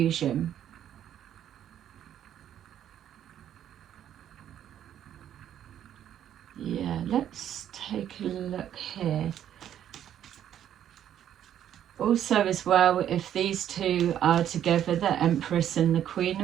Yeah, let's take a look here. Also as well, if these two are together, the Empress and the Queen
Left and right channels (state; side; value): quieter; left; 10.5 dB